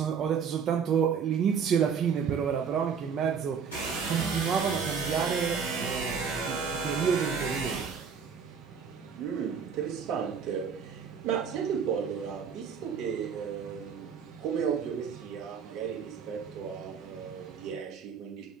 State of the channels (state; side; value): quieter; left; 6.6 dB